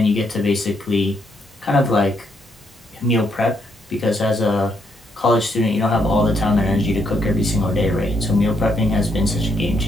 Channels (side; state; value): both; normal; correlation 0.75